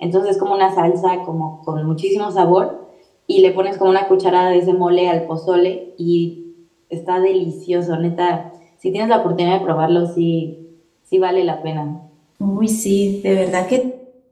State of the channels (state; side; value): identical; both; correlation 1.00